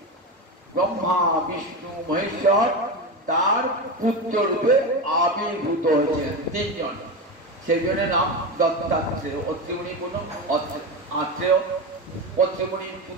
ব্রহ্মা, বিষ্ণু, মহেশ্বর তার পুত্র রূপে আবির্ভূত হয়েছেন 3 জন। সেই জন্য নাম দত্তাত্রেয়। অত্রিমুনি কোন আত্রেয়, অত্রিমুনির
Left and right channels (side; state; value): both; normal; correlation 0.20